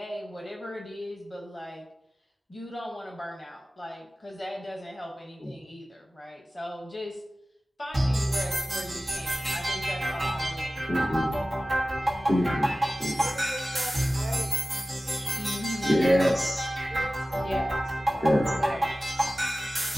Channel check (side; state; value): both; normal; correlation 0.96